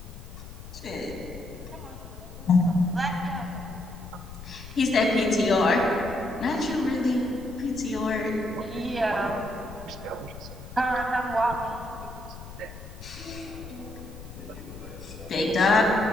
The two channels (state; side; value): noise; left; rumble, 14 dB below the sound